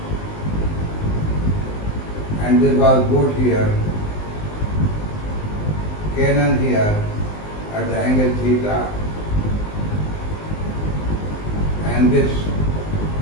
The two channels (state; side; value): late; right; 19 ms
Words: And this was boat here, cannon here at the angle theta. And this